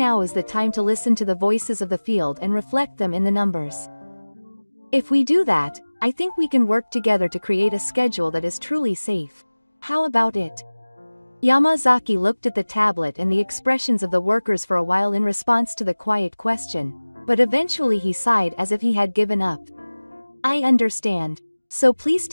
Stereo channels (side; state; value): both; inverted; correlation -1.00